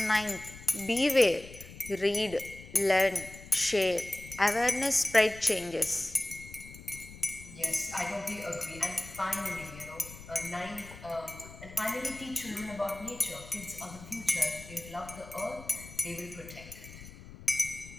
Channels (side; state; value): left; noise; rumble, 16 dB below the sound